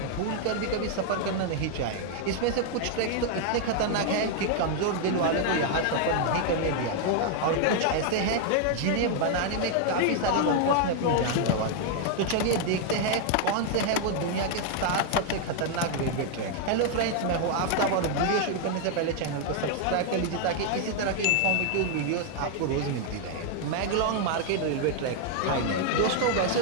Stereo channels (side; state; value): both; different; correlation 0.00